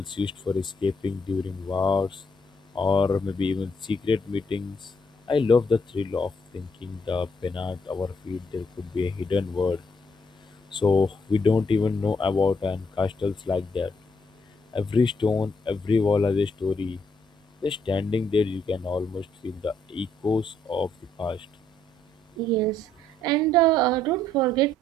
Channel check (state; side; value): normal; both; correlation 0.72